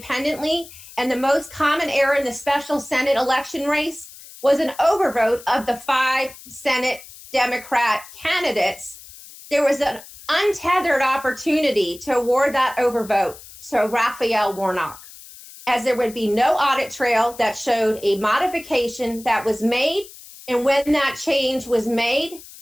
and the most common error in the special Senate election race was an overvote of the 5 Senate Democrat candidates, there was an untethered opportunity to award that overvote to Raphael Warnock, as there would be no audit trail that showed a modification that was made and when that change was made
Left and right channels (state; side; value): noise; left; hiss, 18 dB below the sound